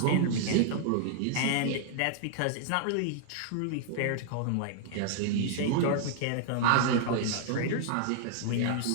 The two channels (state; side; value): different; both; correlation 0.00